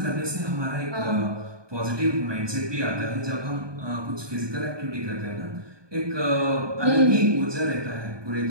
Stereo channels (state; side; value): late; left; 1.2 ms